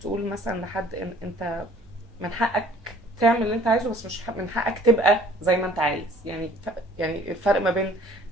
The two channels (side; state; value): both; normal; correlation 0.54